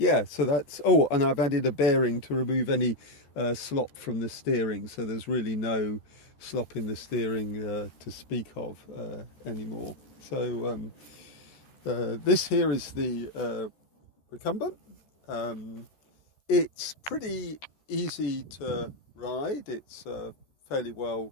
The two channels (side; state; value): right; late; 13 ms